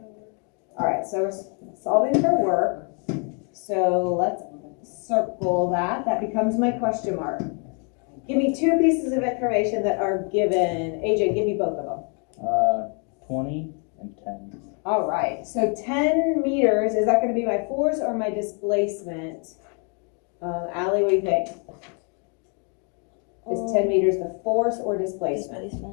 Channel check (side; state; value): right; quieter; 38.9 dB